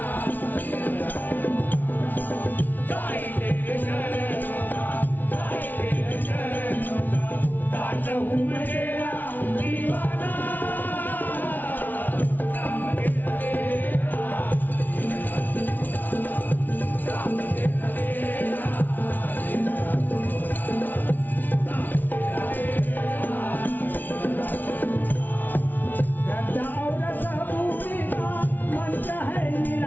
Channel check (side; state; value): right; late; 0.084 ms